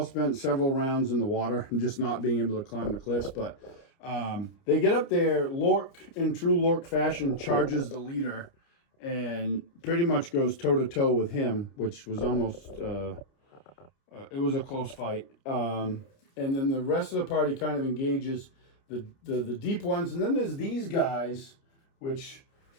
spent several rounds in the water and just not being able to climb the cliffs. But they get up there. Lork, in true Lork fashion, charges the leader and pretty much goes toe-to-toe with him, which was almost, it was a close fight. And then the rest of the party kind of engages the deep ones. And then there's these guys, which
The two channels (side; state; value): right; late; 30 ms